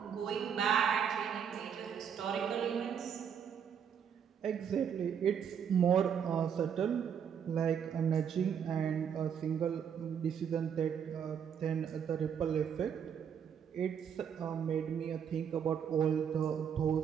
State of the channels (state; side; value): quieter; left; 7.8 dB